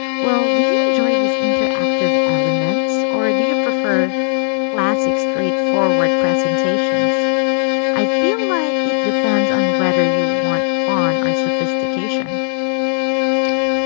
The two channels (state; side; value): silent; right; 58 dB below the other